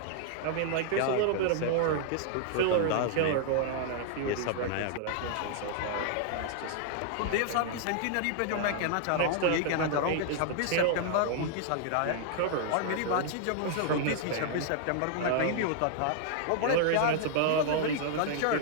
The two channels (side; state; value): both; different; correlation -0.01